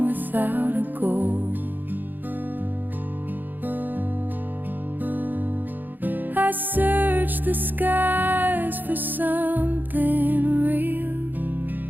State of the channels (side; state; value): left; late; 0.088 ms